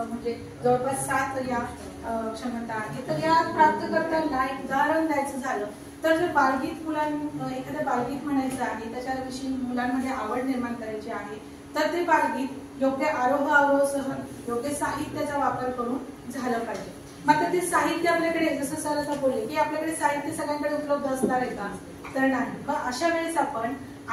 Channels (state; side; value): identical; both; correlation 1.00